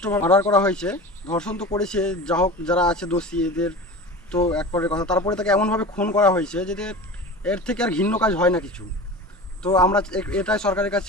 মার্ডার করা হয়েছে। ধর্ষণ তো করেছে, যা হোক যারা আছে দোষী এদের তো এক পরের কথা, তারপরে তাকে এমনভাবে খুন করা হয়েছে যে এর থেকে আর ঘৃণ্য কাজ হয় না কিছু। তো আমরা এটাই সরকারের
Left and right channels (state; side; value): normal; both; correlation 0.34